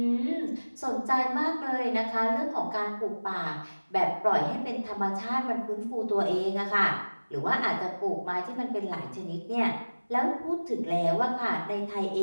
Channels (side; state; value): both; inverted; correlation -1.00